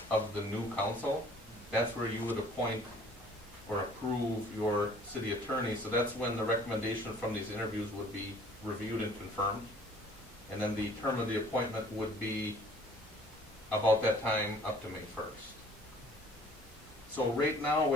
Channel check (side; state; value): both; normal; correlation 0.54